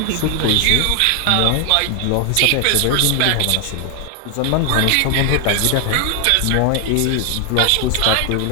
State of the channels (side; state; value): both; different; correlation 0.00